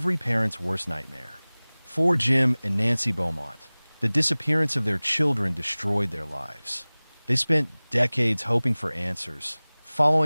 parent's worst nightmare. For Jim and Nancy Beaumont, the disappearance of their children destroyed their lives. They spent decades hoping for answers,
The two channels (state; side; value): inverted; both; correlation -1.00